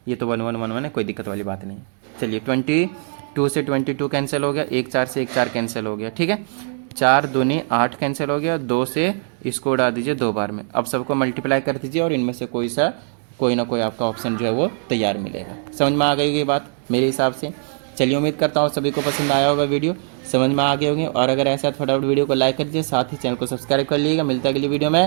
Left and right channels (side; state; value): left; silent; 61 dB below the other